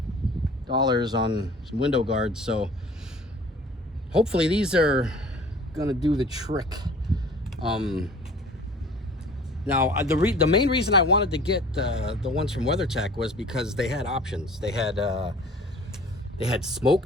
on some window guards. So hopefully these are gonna do the trick. Now the main reason I wanted to get the ones from WeatherTech was because they had options. They had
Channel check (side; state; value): both; normal; correlation 0.47